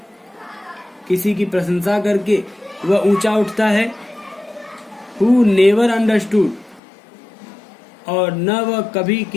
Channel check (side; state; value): right; drops out; at 6.8 s